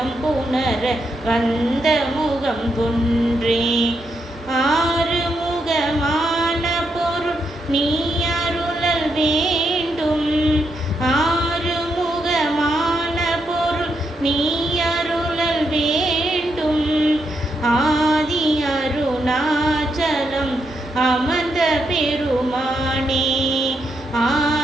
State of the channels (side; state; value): both; normal; correlation 0.81